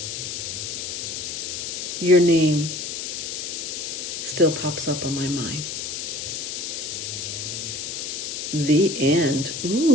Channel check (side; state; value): left; noise; hiss, 5 dB below the sound